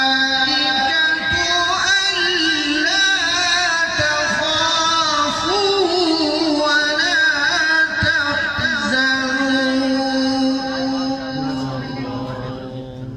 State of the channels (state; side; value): identical; both; correlation 1.00